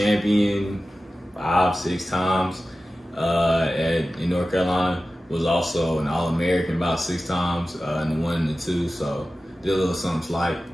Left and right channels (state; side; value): normal; both; correlation 0.95